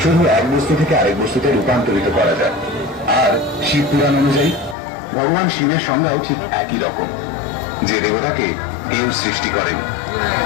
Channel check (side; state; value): right; drops out; at 4.8 s